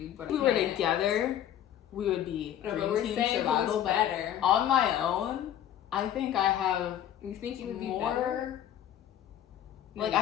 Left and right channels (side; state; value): right; quieter; 10.9 dB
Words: But if we were together, we would be dream team survival. Better on my own. I think I have. You think you would be more better? Like,